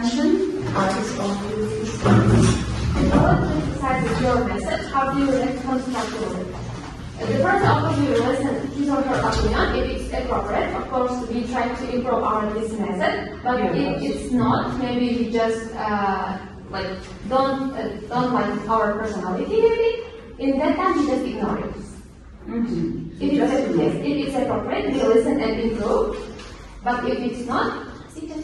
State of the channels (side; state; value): both; identical; correlation 1.00